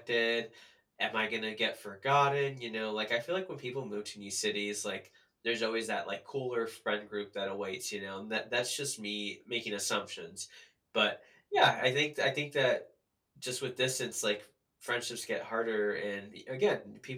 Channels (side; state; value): both; identical; correlation 1.00